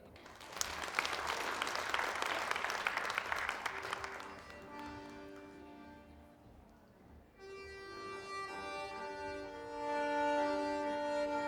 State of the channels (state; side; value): identical; both; correlation 1.00